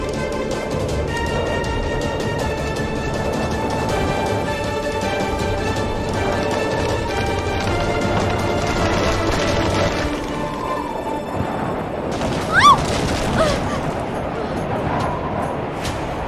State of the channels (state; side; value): identical; both; correlation 1.00